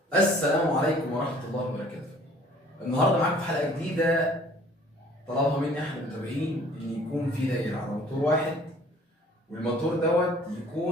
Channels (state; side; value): normal; both; correlation 0.54